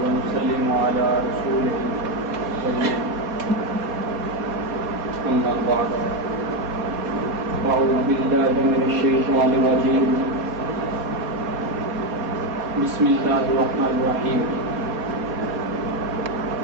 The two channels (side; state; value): left; late; 4.2 ms